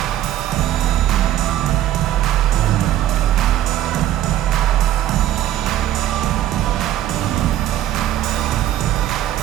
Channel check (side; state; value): left; quieter; 12.6 dB